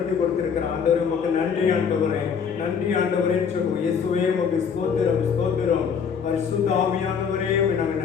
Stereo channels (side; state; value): right; quieter; 6.7 dB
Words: கொடுத்திருக்கிறார். ஆண்டவரே உமக்கு நன்றி ஆண்டவரே, நன்றி ஆண்டவரேன்னு சொல்லுவோம். இயேசுவே உமக்கு ஸ்தோத்திரம், ஸ்தோத்திரம். பரிசுத்த ஆவியானவரே நாங்கள்